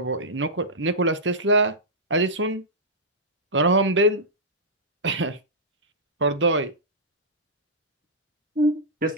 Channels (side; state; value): both; normal; correlation -0.13